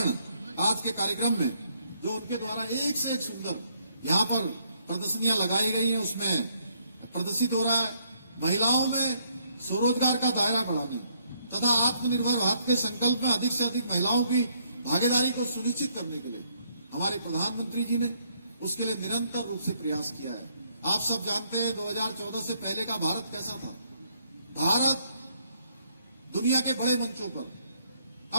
आज के कार्यक्रम में जो उनके द्वारा एक से एक सुंदर यहाँ पर प्रदर्शनियां लगाई गई हैं, उसमें प्रदर्शित हो रहा है। महिलाओं में स्वरोजगार का दायरा बढ़ाने तथा आत्मनिर्भर भारत के संकल्प में अधिक से अधिक महिलाओं की भागीदारी को सुनिश्चित करने के लिए हमारे प्रधानमंत्री जी ने उसके लिए निरंतर रूप से प्रयास किया है। आप सब जानते हैं 2014 से पहले का भारत कैसा था। भारत दुनिया के बड़े मंचों पर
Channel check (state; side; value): inverted; both; correlation -0.70